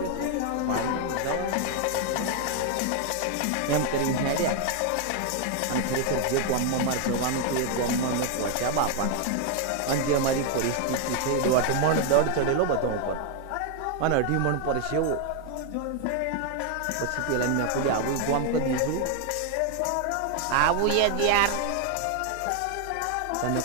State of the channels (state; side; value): different; both; correlation 0.00